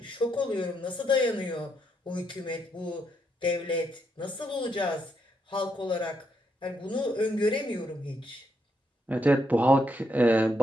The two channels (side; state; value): both; normal; correlation 0.78